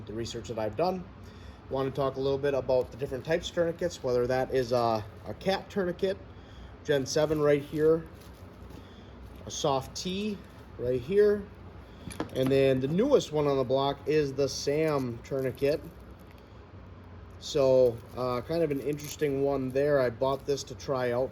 the research that I've done. I want to talk a little bit about the different types of tourniquets, whether that is a cat tourniquet, Gen 7 right here, a SOF-T right here, and then the newest one on the block is the SAM tourniquet. So kind of an interesting one there. I bought this to try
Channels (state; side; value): identical; both; correlation 1.00